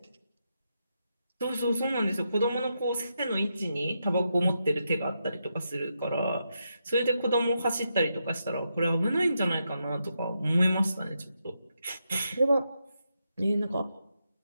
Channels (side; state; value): both; inverted; correlation -0.84